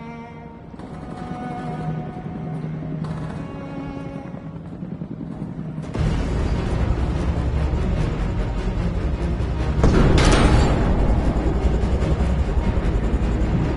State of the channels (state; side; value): identical; both; correlation 1.00